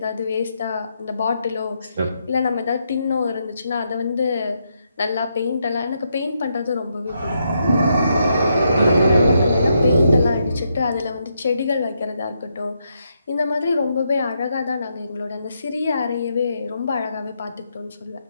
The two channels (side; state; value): both; inverted; correlation -0.80